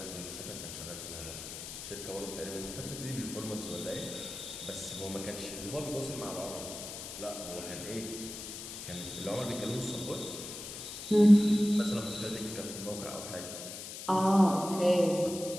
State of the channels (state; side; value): noise; left; hiss, 9 dB below the sound